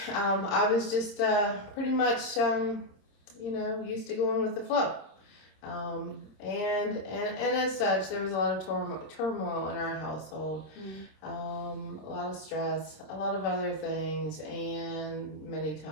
I was just pretty much, used to going with the flow. And as such, there was a lot of turmoil in our household, a lot of stress, a lot of other things, and many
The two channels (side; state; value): right; late; 26 ms